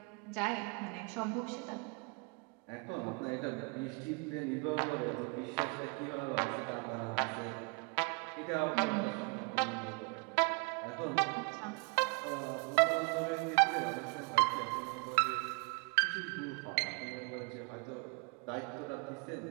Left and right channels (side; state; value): left; quieter; 33.4 dB